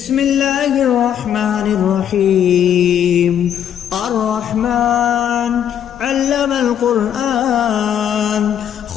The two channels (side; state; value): right; quieter; 9.5 dB